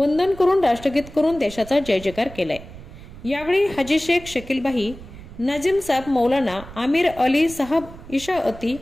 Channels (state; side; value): noise; right; rumble, 16 dB below the sound